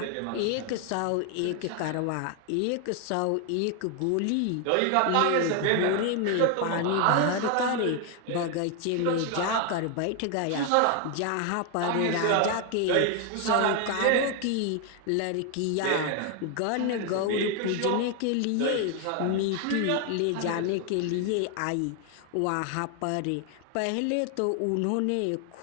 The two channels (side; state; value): both; different; correlation 0.01